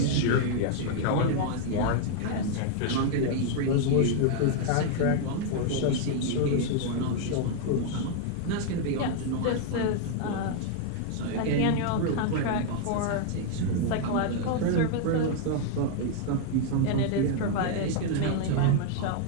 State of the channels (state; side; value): different; both; correlation 0.00